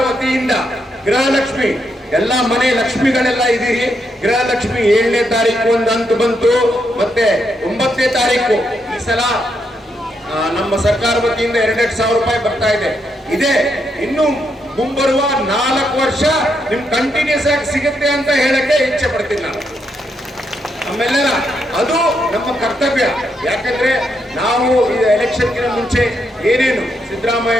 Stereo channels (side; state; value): both; normal; correlation 0.79